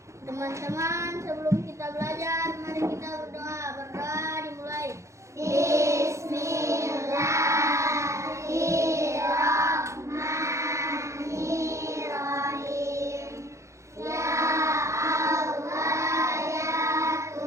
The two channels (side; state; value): left; late; 0.14 ms